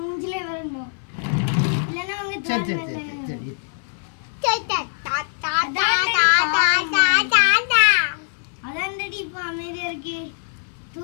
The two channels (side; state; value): right; silent; 59 dB below the other